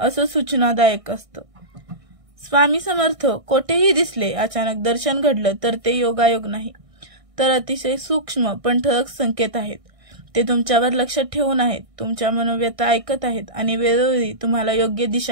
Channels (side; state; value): left; late; 1.6 ms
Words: सूचनादायक असतं. स्वामी समर्थ कोठेही दिसले, अचानक दर्शन घडलं तर ते योगायोग नाही, तर अतिशय सूक्ष्म पण ठळक संकेत आहेत. ते तुमच्यावर लक्ष ठेवून आहेत, तुमच्या मनोव्यथा ऐकत आहेत आणि वेळोवेळी तुम्हाला योग्य